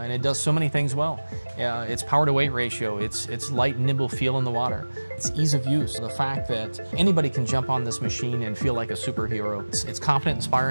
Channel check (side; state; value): both; inverted; correlation -1.00